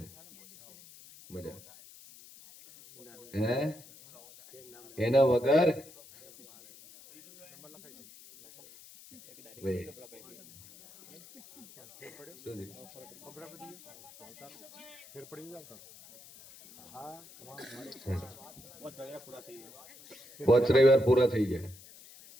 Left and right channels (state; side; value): noise; left; hiss, 20 dB below the sound